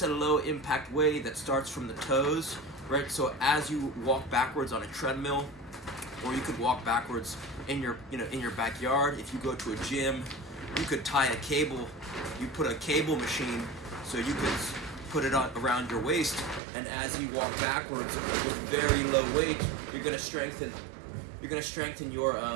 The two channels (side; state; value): left; drops out; at 16.6 s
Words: a low impact way that starts from the toes, right? So as you walk backwards on a treadmill, or you could walk backwards in your backyard. If you go to a gym, you could tie a cable. You put a cable machine, so you could put it around your waist, and as you walk backwards with very low weight, you're gonna strengthen your